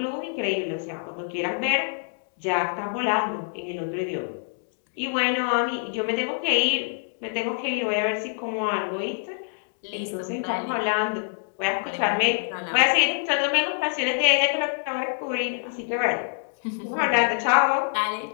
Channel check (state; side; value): silent; right; digital silence